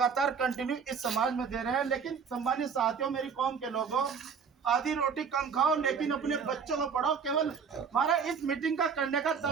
कंटिन्यू इस समाज में दे रहे हैं। लेकिन सम्मानित साथियों, मेरी कौम के लोगों, आधी रोटी कम खाओ लेकिन अपने बच्चों को पढ़ाओ। केवल हमारा इस मीटिंग का करने का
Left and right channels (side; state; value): left; quieter; 6.3 dB